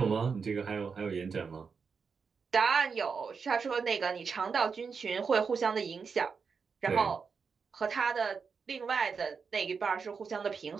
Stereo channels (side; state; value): left; quieter; 5.5 dB